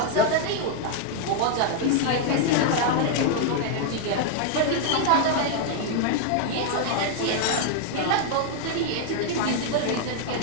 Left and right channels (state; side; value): different; both; correlation 0.00